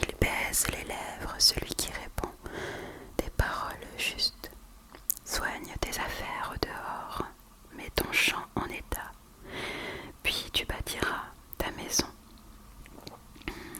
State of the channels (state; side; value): identical; both; correlation 1.00